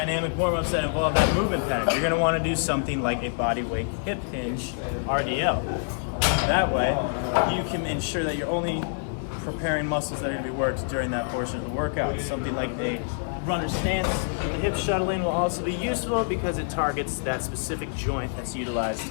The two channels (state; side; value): silent; right; 55 dB below the other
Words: warm-ups that involve that movement pattern. You're going to want to do something like a body weight hip hinge RDL. That way, you can ensure that you're only preparing muscles that are going to be worked during that portion of the workout. Something like a runner stance with the hip shuttling will also be useful because it targets that specific joint that's utilized